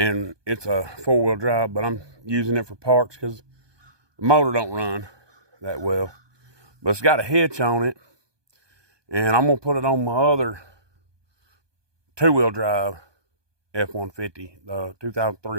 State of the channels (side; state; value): left; late; 1.2 ms